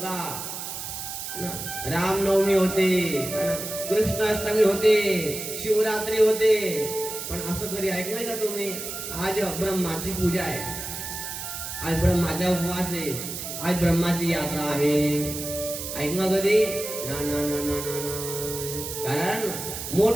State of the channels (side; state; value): right; noise; hiss, 7 dB below the sound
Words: रामनवमी होते, कृष्णाष्टमी होते, शिवरात्री होते, पण असं कधी ऐकलंय का तुम्ही? आज ब्रह्माची पूजा आहे, आज ब्रह्माचा उपवास आहे, आज ब्रह्माची यात्रा आहे. ऐकलं कधी? ना ना ना ना ना. कारण